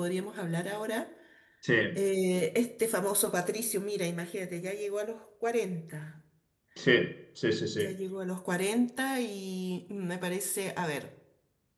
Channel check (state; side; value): identical; both; correlation 1.00